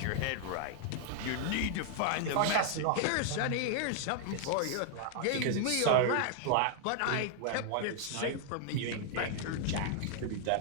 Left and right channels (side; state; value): both; different; correlation 0.00